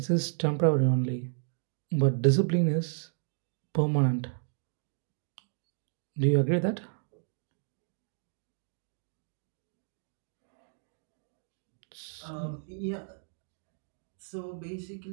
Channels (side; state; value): left; silent; digital silence